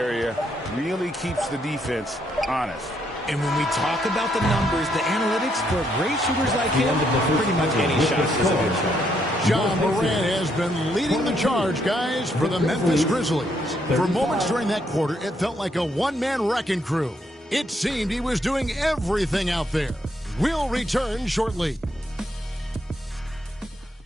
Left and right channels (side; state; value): both; normal; correlation 0.74